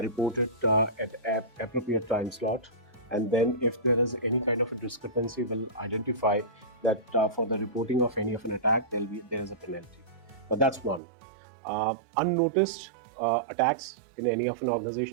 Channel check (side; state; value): left; drops out; at 11.0 s